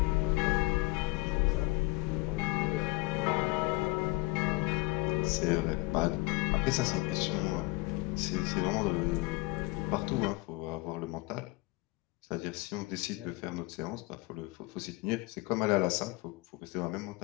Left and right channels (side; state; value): right; quieter; 22.8 dB